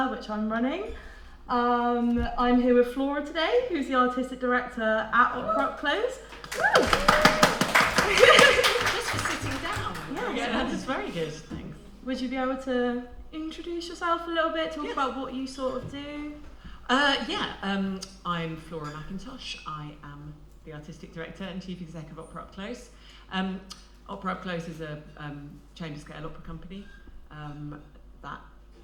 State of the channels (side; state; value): both; identical; correlation 1.00